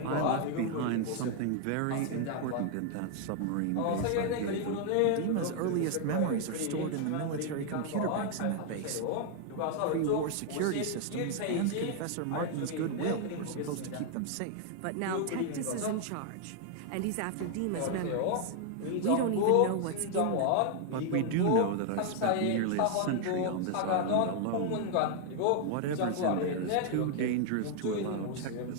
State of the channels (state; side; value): different; both; correlation 0.00